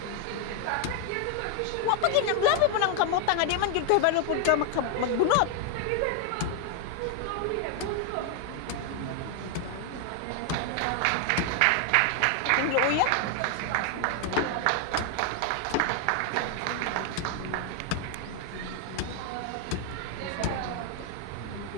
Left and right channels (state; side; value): different; both; correlation 0.00